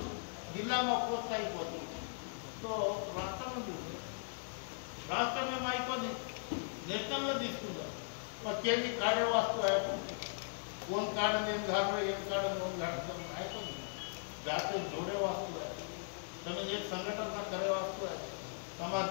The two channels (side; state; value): right; silent; digital silence